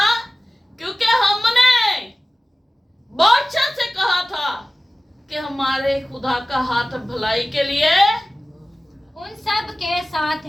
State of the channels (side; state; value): both; normal; correlation 0.97